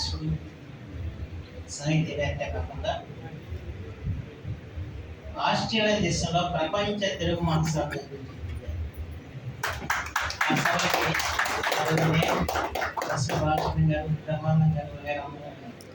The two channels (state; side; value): identical; both; correlation 1.00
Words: సాహిత్యవేత్త కాకుండా ఆస్ట్రేలియా దేశంలో ప్రపంచ తెలుగు మహాసభ గారు, బ్రహ్మానందం గారు,